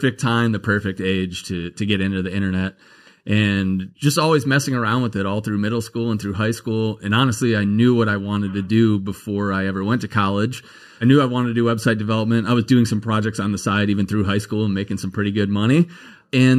time, the perfect age to get into the internet, and just always messing around with it all through middle school and through high school. And honestly, I knew what I wanted to do before I ever went to college. I knew I wanted to do website development. I was doing some projects on the side, even through high school, and making some pretty good money.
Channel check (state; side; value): identical; both; correlation 1.00